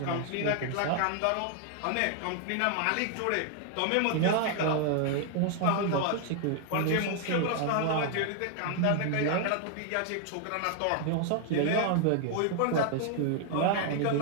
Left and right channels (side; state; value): both; different; correlation 0.00